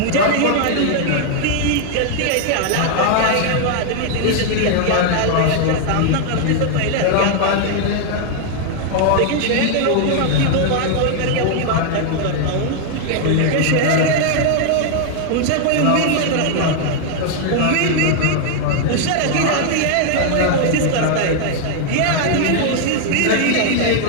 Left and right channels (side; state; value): both; different; correlation 0.00